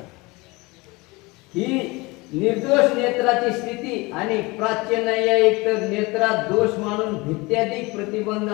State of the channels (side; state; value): right; quieter; 24.0 dB